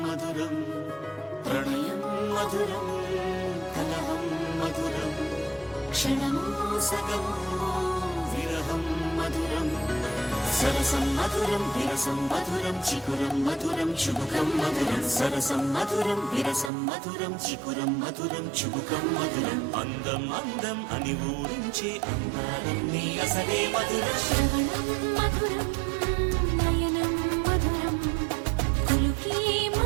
మధురం ప్రణయం మధురం కలహం మధురం క్షణము సగము విరహం మధురం సరసం మధురం విరసం మధురం చికురం మధురం చుబుకం మధురం సరసం మధురం విరసం మధురం చికురం మధురం చుబుకం మధురం అందం అందం అని ఊరించే అందాలన్నీ అసలే మధురం శ్రవణం మధురం నయనం మధురం కులుకి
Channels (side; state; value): left; drops out; at 16.7 s